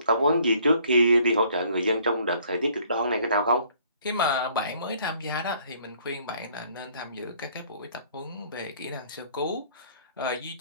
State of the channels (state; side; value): inverted; both; correlation -0.61